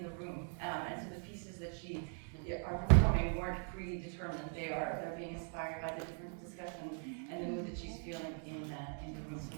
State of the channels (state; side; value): silent; left; 51 dB below the other